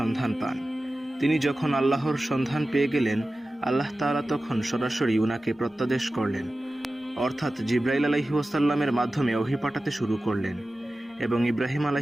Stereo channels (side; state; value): both; normal; correlation 0.95